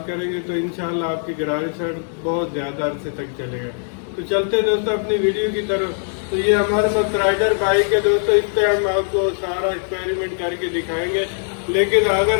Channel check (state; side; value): silent; right; 65 dB below the other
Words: करेंगे तो इंशाल्लाह आपकी गरारी सेट बहुत ज़्यादा अरसे तक चलेगा। तो चलते दोस्तों अपनी वीडियो की तरफ। तो ये हमारे पास राइडर बाइक है दोस्तों, इस पर हम आपको सारा एक्सपेरिमेंट करके दिखाएंगे। लेकिन अगर